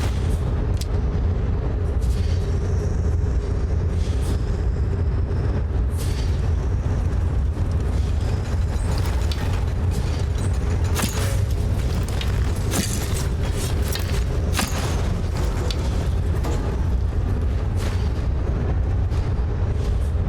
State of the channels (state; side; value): identical; both; correlation 1.00